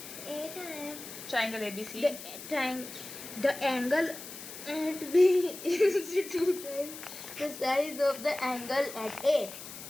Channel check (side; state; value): left; noise; hiss, 12 dB below the sound